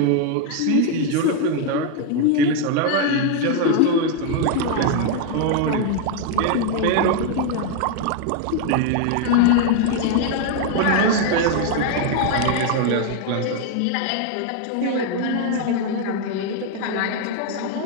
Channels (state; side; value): different; both; correlation 0.00